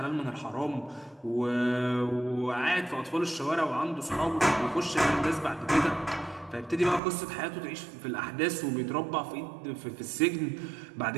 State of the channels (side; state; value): left; drops out; at 7.0 s